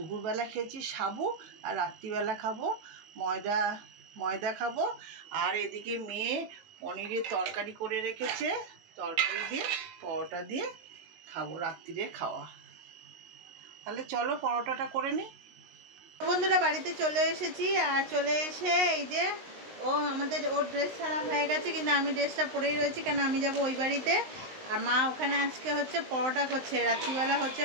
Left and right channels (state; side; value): late; left; 19 ms